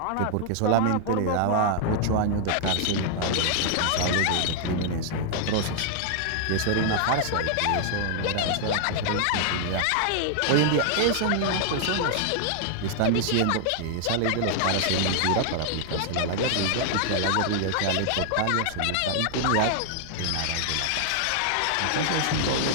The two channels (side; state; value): both; different; correlation 0.00